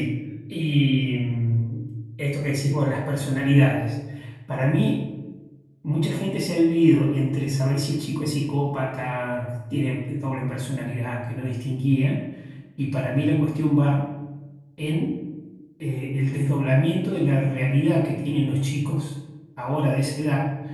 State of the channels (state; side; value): identical; both; correlation 1.00